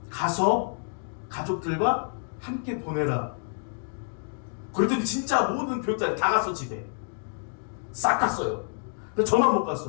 가서 가족들과 함께 보내라. 그랬더니 진짜 모든 교육자들이 다 갔어. 집에 싹 갔어요. 근데 저만 못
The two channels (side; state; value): right; silent; digital silence